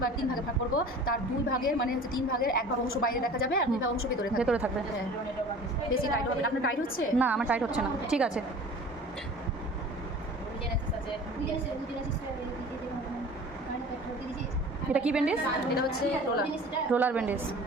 ভাগে ভাগ করবো। তার 2 ভাগের মানে হচ্ছে 3 ভাগের 1 ভাগ অংশ বাইরে দেখা যাবে, আর 2 ভাগ অংশ ভেতরে থাকবে। হ্যাঁ, বেশি টাইট হবে না। আপনার টাইট হচ্ছে না, আমার টাইট হচ্ছে না। ঠিক আছে। এটা কি ব্যান্ডেজ? এটা হচ্ছে রোলার ব্যান্ডেজ।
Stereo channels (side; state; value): both; normal; correlation 0.43